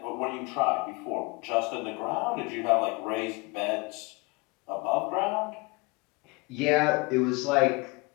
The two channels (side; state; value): right; quieter; 26.7 dB